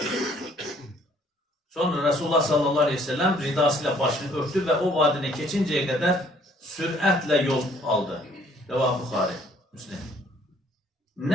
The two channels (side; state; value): both; normal; correlation 0.61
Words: Sonra Resulullah sallallahu aleyhi ve sellem ridasıyla başını örtü ve o vadine keçinceye kadar süratle yol aldı. Rəvah Buxari, Müslim.